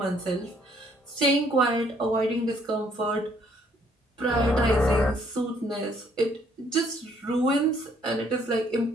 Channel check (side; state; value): both; normal; correlation 0.65